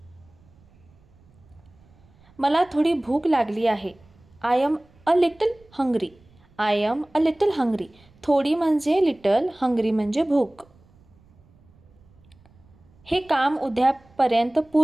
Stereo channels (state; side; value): noise; right; rumble, 29 dB below the sound